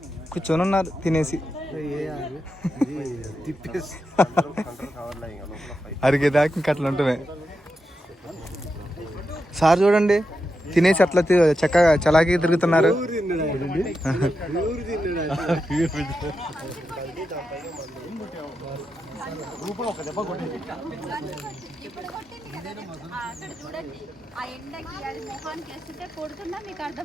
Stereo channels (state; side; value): normal; both; correlation 0.87